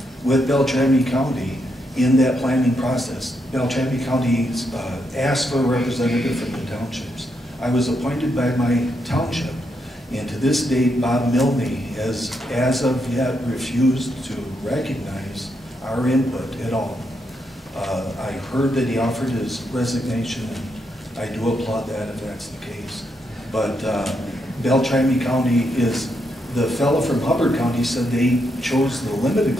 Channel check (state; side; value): normal; both; correlation 0.80